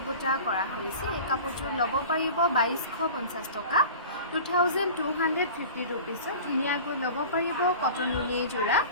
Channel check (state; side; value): inverted; both; correlation -0.38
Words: বুটা কৰা হৈছে এই কাপোৰযোৰ ল'ব পাৰিব 2250 টকা 2250 ৰুপিজ ধুনীয়াকৈ ল'ব পাৰিব কটন নুনি যোৰা